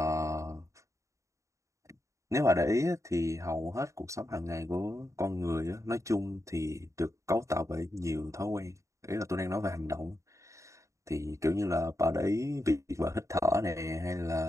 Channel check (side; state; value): left; late; 0.15 ms